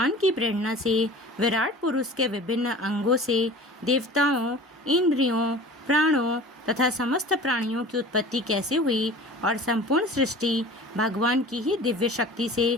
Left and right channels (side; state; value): both; normal; correlation 0.41